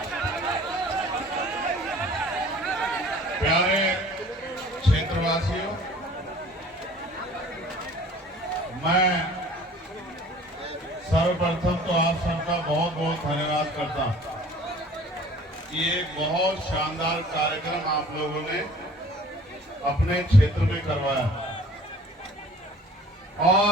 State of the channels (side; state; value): both; normal; correlation 0.50